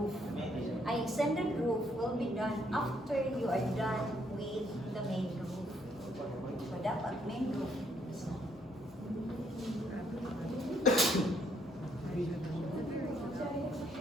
An extended roof will be done after you are done with the main roof. So, dapat main roof.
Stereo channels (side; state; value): both; normal; correlation 0.70